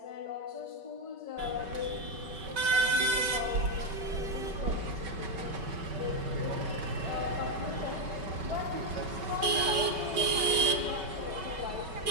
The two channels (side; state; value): left; late; 5.3 ms